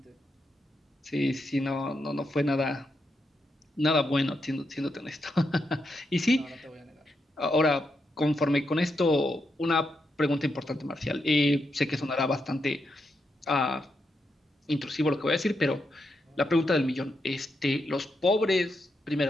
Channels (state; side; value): normal; both; correlation 0.83